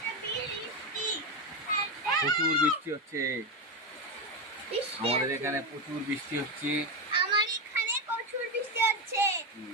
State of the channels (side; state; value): both; normal; correlation 0.12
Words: প্রচুর বৃষ্টি হচ্ছে, আমাদের এখানে প্রচুর বৃষ্টি হচ্ছে। আমার এখানে প্রচুর বৃষ্টি হচ্ছে।